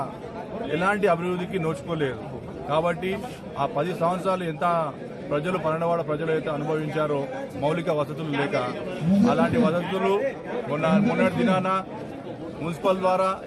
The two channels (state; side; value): identical; both; correlation 1.00